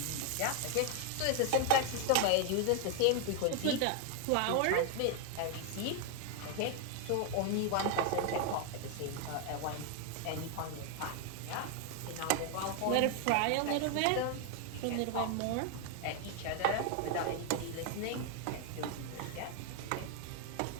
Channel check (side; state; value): both; different; correlation 0.01